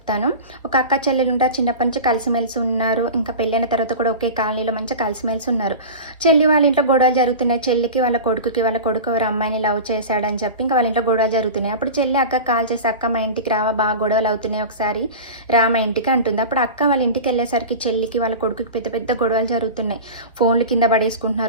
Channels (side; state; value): both; inverted; correlation -0.30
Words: ఒక అక్క చెల్లెలు ఉంటారు. చిన్నప్పటి నుంచి కలిసిమెలిసి ఉన్నారు. ఇంకా పెళ్ళైన తర్వాత కూడా ఒకే కాలనీలో మంచిగా కలిసిమెలిసి ఉన్నారు. చెల్లి వాళ్ళ ఇంట్లో గొడవలు జరుగుతున్నాయి. చెల్లికి వాళ్ళ కొడుకు ఎవరో అమ్మాయిని లవ్ చేశాడని చెప్పి ఇంకా వాళ్ళ ఇంట్లో గొడవలు జరుగుతున్నాయి. అప్పుడు చెల్లి అక్కకి కాల్ చేసి, "అక్క మా ఇంటికి రావా, బాగా గొడవలు అవుతున్నాయి, ఒకసారి రా మా ఇంటికి" అంటుంది. అప్పుడు అక్క వాళ్ళ ఇంటికి వెళ్ళేసరికి చెల్లికి వాళ్ళ కొడుకుకి పెద్ద పెద్ద గొడవలు జరుగుతున్నాయి. ఫోన్లు కింద